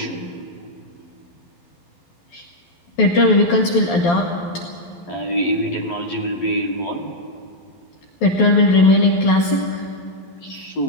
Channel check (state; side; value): late; right; 12 ms